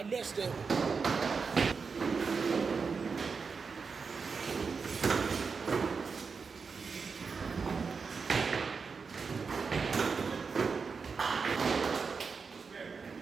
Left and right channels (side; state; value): left; quieter; 5.2 dB